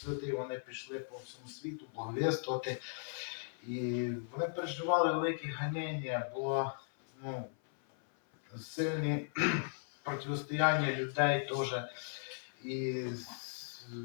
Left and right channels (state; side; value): silent; right; 53 dB below the other